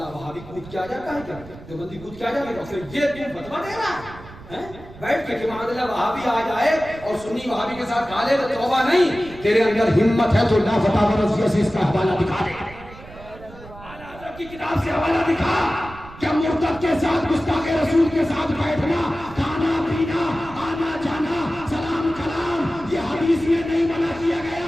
وہابی کود کیا جاتا ہے, کیا دیوبندی کود کیا جاتا ہے, پھر یہ تم فتویٰ دے رہا ہے بیٹھ کے کہ معاذ اللہ وہابی آ جائے اور سنی وہابی کے ساتھ کھا لے تو توبہ نہیں. تیرے اندر ہمت ہے تو لا فتاوی رضویہ سے اس کا حوالہ دکھا دے, اعلیٰ حضرت کی کتاب سے حوالہ دکھا. کیا مرتد کے ساتھ گستاخ رسول کے ساتھ بیٹھنا, کھانا پینا, آنا جانا, سلام کلام یہ حدیث میں نہیں منع کیا گیا.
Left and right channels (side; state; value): right; noise; rumble, 18 dB below the sound